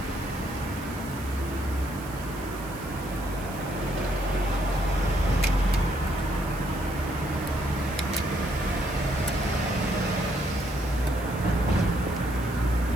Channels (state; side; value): noise; right; hiss, 17 dB below the sound